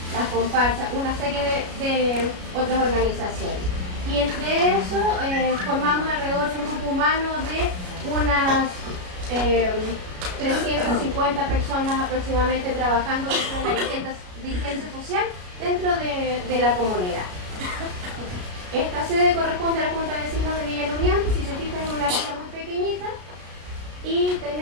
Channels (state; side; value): late; left; 33 ms